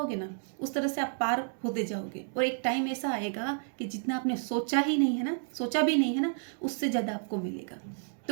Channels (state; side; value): silent; left; digital silence